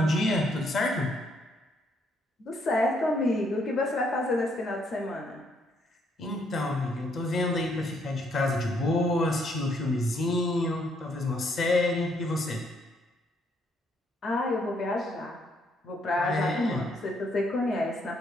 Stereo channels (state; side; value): normal; both; correlation 0.71